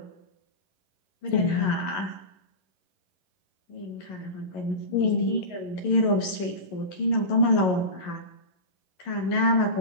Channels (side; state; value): right; late; 11 ms